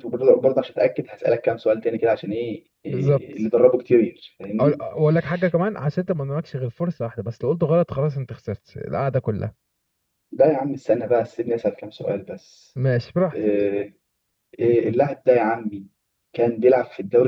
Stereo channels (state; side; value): identical; both; correlation 1.00